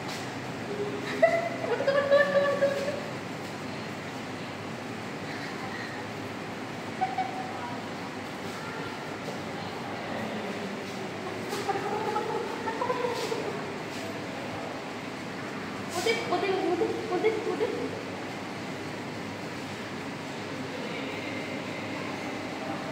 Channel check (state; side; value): identical; both; correlation 1.00